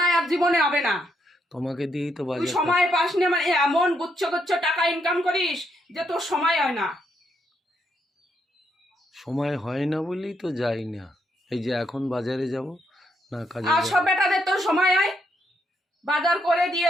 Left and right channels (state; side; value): normal; both; correlation 0.77